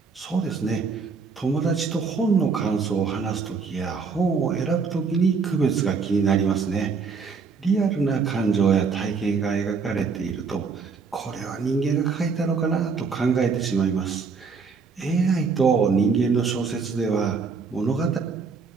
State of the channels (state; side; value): quieter; left; 5.1 dB